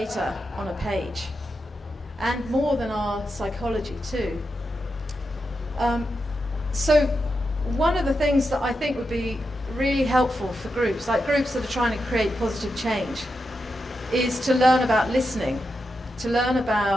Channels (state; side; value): normal; both; correlation 0.87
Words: on a page, and more than our psychology too. So one of the things that I think would be really helpful for groups, like groups that are trying to create positive change, is to learn about listening, to learn